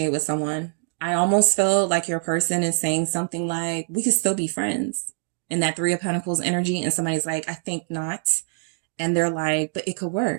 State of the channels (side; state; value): left; silent; digital silence